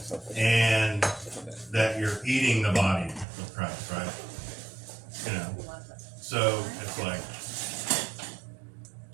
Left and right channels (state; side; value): drops out; left; at 3.2 s